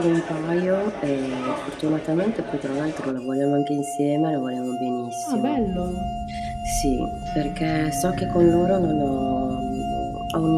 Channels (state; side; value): identical; both; correlation 1.00